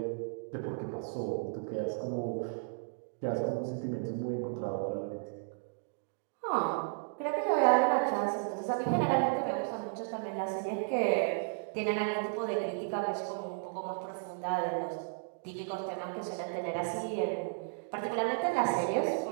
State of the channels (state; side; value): silent; left; digital silence